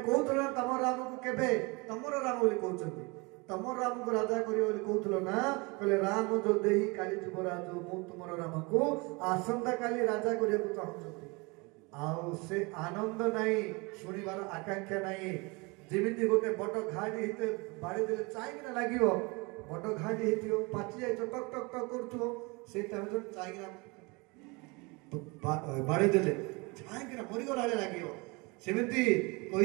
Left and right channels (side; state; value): left; quieter; 27.4 dB